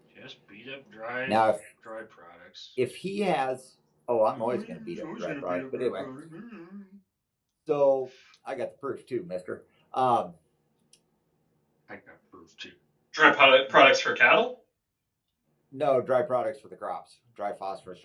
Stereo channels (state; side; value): identical; both; correlation 1.00